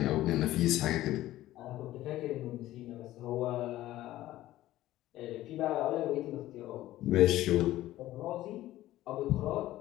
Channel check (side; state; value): right; quieter; 15.1 dB